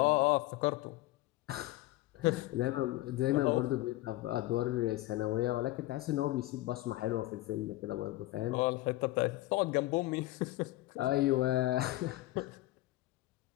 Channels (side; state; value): right; quieter; 17.8 dB